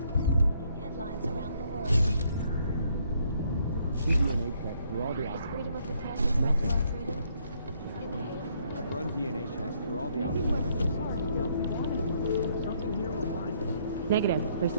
headlines around the world. DNA check through all the outlets. Freedom of the press is maximum freedom. In the hand. I've run DNA checks through all the outlets. Nothing. Something here will find. Negative. They're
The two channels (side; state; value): both; inverted; correlation -0.69